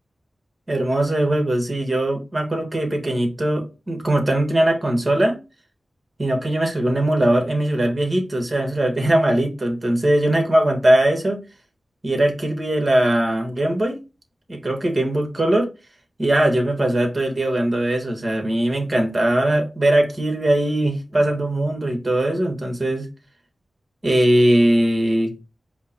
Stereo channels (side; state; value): both; normal; correlation 0.96